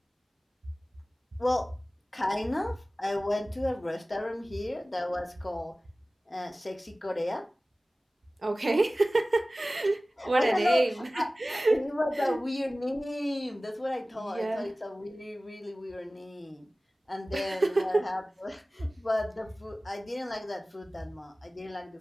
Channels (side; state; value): both; normal; correlation 0.97